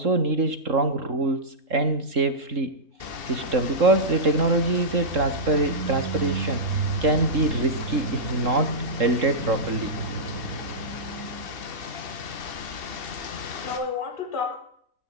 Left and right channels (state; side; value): late; left; 3.7 ms